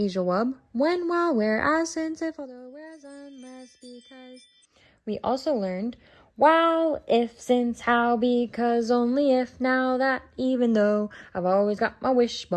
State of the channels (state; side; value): identical; both; correlation 1.00